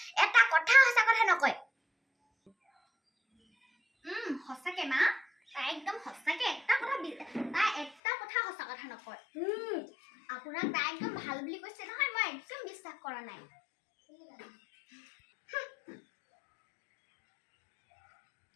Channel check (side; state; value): right; drops out; at 8.0 s